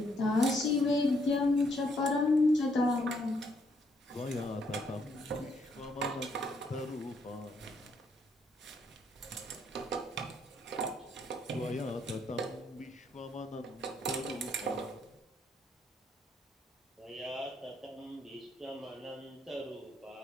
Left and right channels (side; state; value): both; normal; correlation 0.72